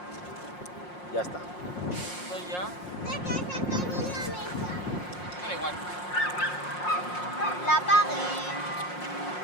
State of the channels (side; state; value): right; late; 5.6 ms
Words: Ya está. Esto ya... ¿De qué se cayó la mesa? Da igual. La apagué.